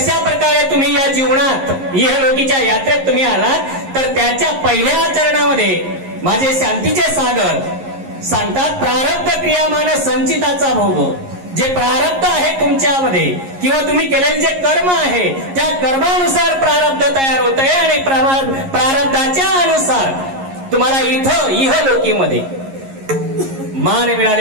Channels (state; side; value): late; left; 11 ms